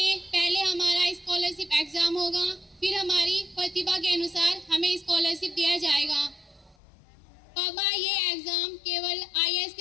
पहले हमारा स्कॉलरशिप एग्जाम होगा, फिर हमारी प्रतिभा के अनुसार हमें स्कॉलरशिप दिया जाएगा। पापा, ये एग्जाम केवल आईएएस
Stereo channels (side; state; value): right; drops out; at 6.8 s